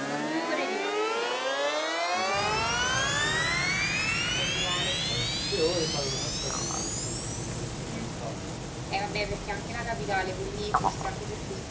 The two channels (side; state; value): both; identical; correlation 1.00